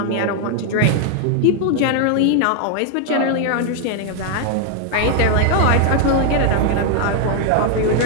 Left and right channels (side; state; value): both; different; correlation 0.00